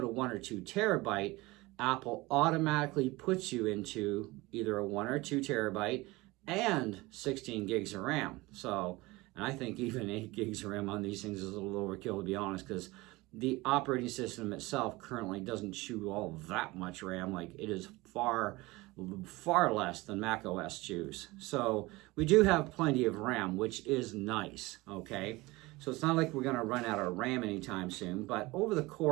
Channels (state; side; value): quieter; left; 21.5 dB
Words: to 1 or 2 terabyte, Apple automatically puts you into either a 1 or 2 terabyte and 16 gigs of RAM. So, and I think even 8 gigs of RAM on these things is a little overkill, to be honest, because the operating system itself currently doesn't chew all that much RAM. Like, it is far less than Mac OS chews. So we do have plenty of RAM, which is nice, okay? So it's not like we're going to run out of RAM anytime soon, but over the